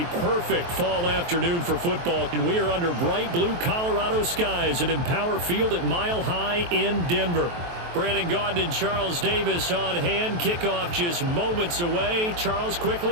perfect fall afternoon for football, and we are under bright blue Colorado skies at Empower Field at Mile High in Denver. Brandon Gaudin and Charles Davis on hand. Kickoff just moments away. Charles,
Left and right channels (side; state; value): left; late; 23 ms